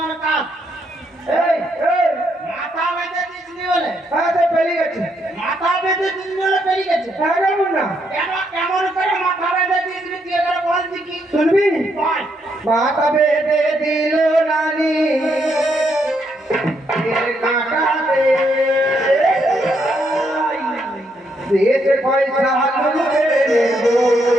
কাজ এই এই মাথা বেঁধে দিয়েছিলি বলে? হ্যাঁ তো পেলি গেছে। মাথা বেঁধে দিয়েছিলি বলে পেলি গেছে? হ্যাঁ কেমন না কেন কেমন করে মাথা বেঁধে দিয়েছিলি তুই এবারে বল দেখি। শুনবি? বল। মাথা বেঁধে দিল নানি কাটাতে দেশে পয়সা লুটে নেবো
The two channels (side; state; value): both; normal; correlation 0.76